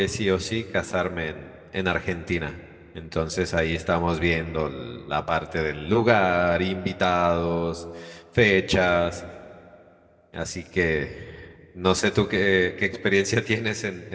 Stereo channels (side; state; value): both; identical; correlation 1.00